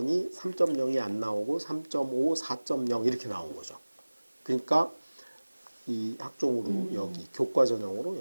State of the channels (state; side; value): inverted; both; correlation -1.00